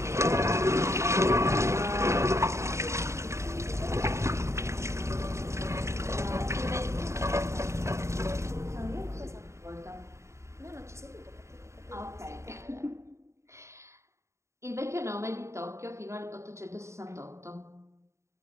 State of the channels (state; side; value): late; left; 0.14 ms